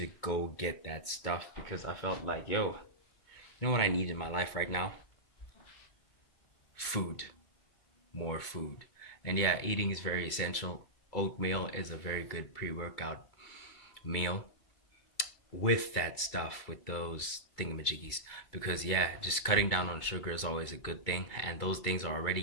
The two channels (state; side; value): late; right; 2.2 ms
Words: go get that stuff because I felt like, yo, you know what I need in my life right now? Food. More food. And yeah, eating is very essential. Oatmeal is a very good pre-workout meal with that stuff, with those thingamajiggies, because yeah, just cutting down on sugar is always a good thing, and those things are